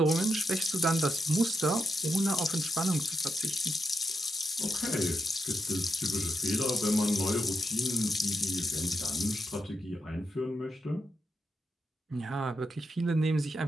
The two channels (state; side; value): normal; both; correlation 0.83